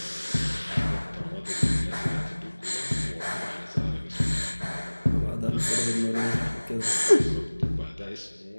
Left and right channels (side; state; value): both; inverted; correlation -1.00